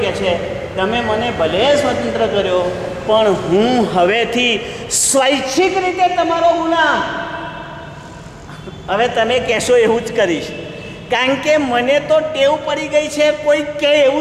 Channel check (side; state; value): both; identical; correlation 1.00